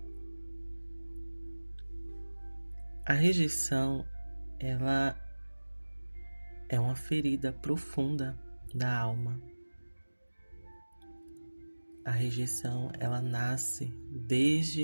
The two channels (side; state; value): both; inverted; correlation -1.00